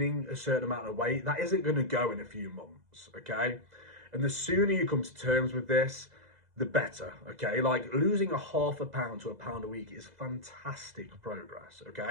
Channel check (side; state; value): left; late; 2.0 ms